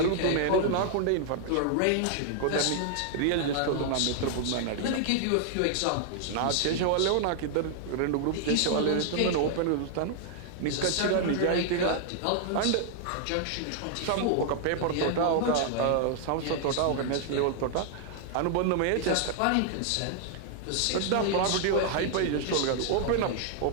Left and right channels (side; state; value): both; different; correlation 0.00